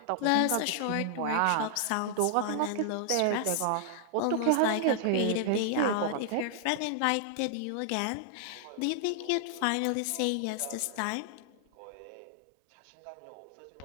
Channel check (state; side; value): different; both; correlation -0.01